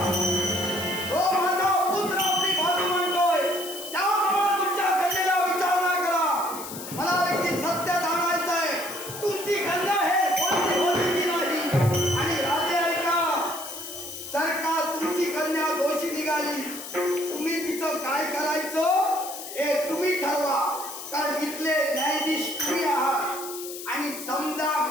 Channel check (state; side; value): noise; left; hiss, 10 dB below the sound